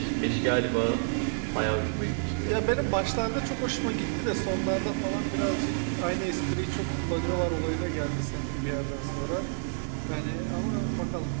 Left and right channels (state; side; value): silent; left; digital silence